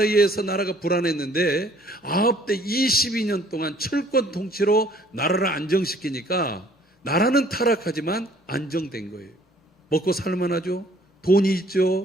의해서 나라가 불안했는데 아합 때 22년 동안 철권 통치로 나라를 안정시키니까 나라는 타락하지만 안정된 거예요. 먹고 살만하죠. 돈이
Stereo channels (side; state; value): both; normal; correlation 0.58